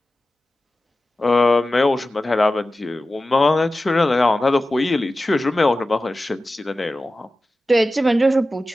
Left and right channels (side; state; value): both; normal; correlation 0.94